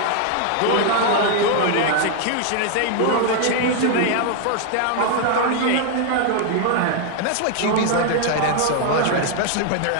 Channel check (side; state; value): both; different; correlation 0.00